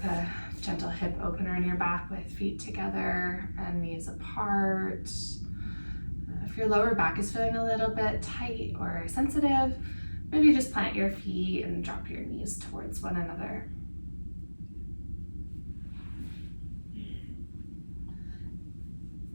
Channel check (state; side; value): inverted; both; correlation -1.00